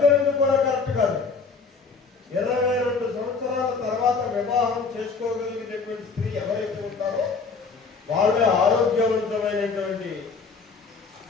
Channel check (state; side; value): quieter; right; 4.8 dB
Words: కూడా కరెక్ట్ కాదు. 22 సంవత్సరాల తర్వాత వివాహం చేసుకోగలిగినటువంటి స్త్రీ ఎవరైతే ఉంటారో వాళ్ళే ఆరోగ్యవంతమైనటువంటి